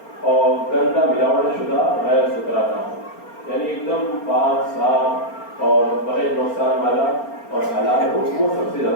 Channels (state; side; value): late; right; 4.3 ms